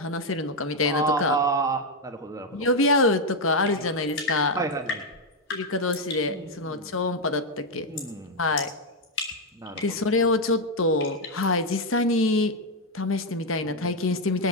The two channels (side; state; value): both; normal; correlation 0.03